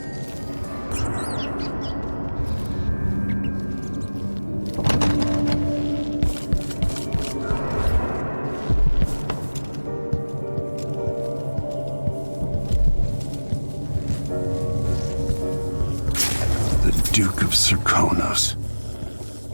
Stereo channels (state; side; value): inverted; both; correlation -1.00